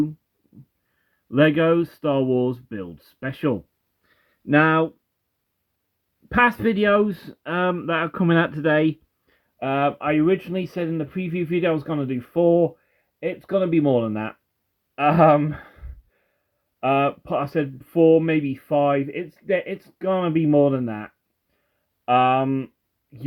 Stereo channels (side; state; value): both; identical; correlation 1.00